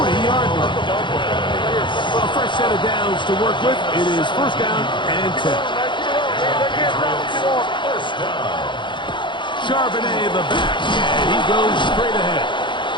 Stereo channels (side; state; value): right; late; 0.23 ms